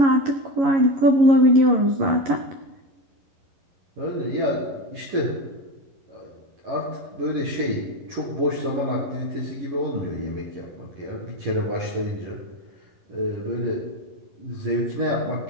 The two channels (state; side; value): late; left; 11 ms